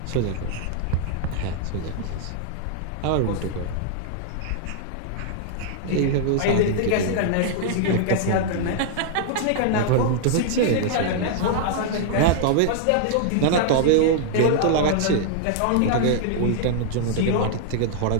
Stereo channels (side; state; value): both; different; correlation -0.01